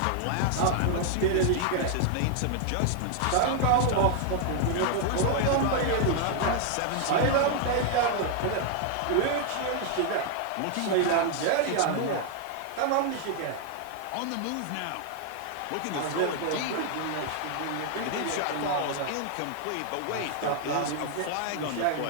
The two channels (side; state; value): both; different; correlation 0.00